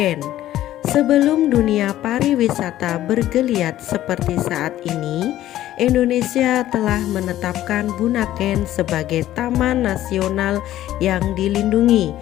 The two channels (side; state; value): right; quieter; 13.5 dB